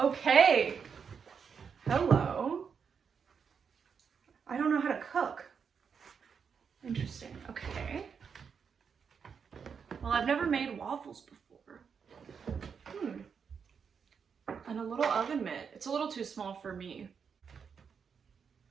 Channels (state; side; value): quieter; left; 6.4 dB